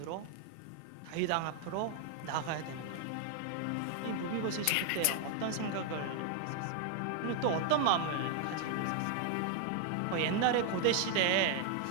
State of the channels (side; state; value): both; different; correlation 0.00